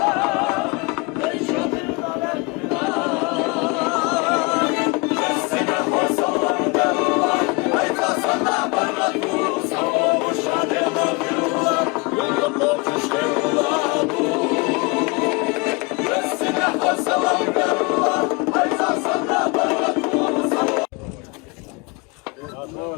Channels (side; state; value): right; quieter; 27.9 dB